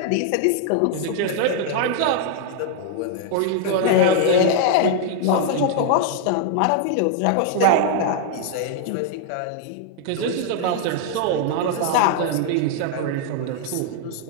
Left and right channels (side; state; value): both; different; correlation 0.00